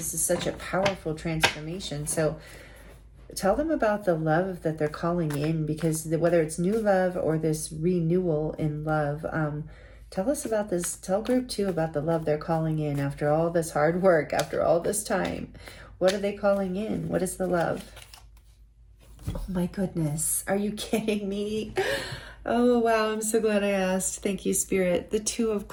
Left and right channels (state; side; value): identical; both; correlation 1.00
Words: is such a powerful transformation. So tell them about the love that they're calling in, because whether it's new love or this renewal in love, tell us about this. Tell group 2 about the love they're calling in after all this hard work, after all this time. What are they calling in? What is the love? Oh my goodness. Are you kidding me? Oh, wow. I'm so glad I asked. Thank you, Spirit. The 2 of